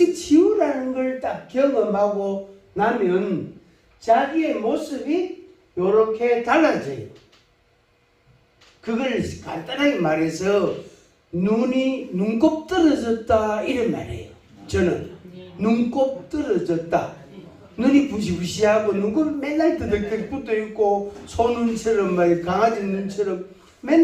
치유라는 걸 딱 경험하고 나면 자기의 모습이 이렇게 달라져요. 그걸 간단하게 말해서 눈곱 떨어졌다 이런 말이에요. 저는 눈곱 떨어졌다. 눈이 부시부시하고 눈곱이 맨날 뜨덕뜨덕 붙어있고 소눈처럼 강아지 눈처럼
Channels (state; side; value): identical; both; correlation 1.00